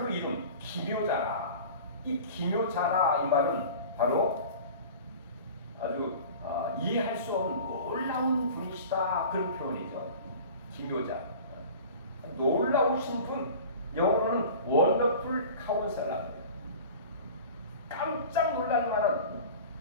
이름 기묘자라. 이 기묘자라 이 말은 바로 아주 이해할 수 없는 놀라운 분이시다, 그런 표현이죠. 기묘자, 놀라우신 분, 영어로는 원더풀 카운셀러입니다. 깜짝 놀랄 만한,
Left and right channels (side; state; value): both; inverted; correlation -0.39